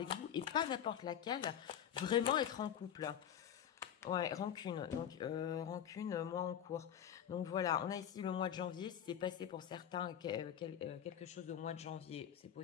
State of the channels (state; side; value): quieter; right; 9.6 dB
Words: vous et pas n'importe laquelle, vraiment être en couple. Ouais, rancune. Donc, rancune, mois en cours. Donc, voilà, on a ici le mois de janvier. C'est passé pour certains quelque chose au mois de janvier. C'est